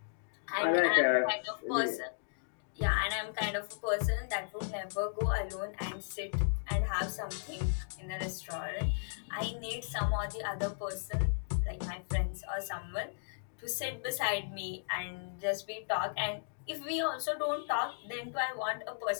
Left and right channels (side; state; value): right; silent; digital silence